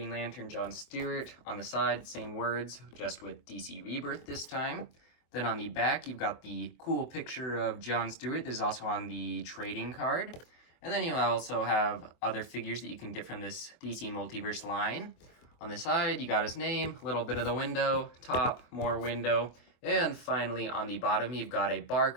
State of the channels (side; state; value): right; late; 23 ms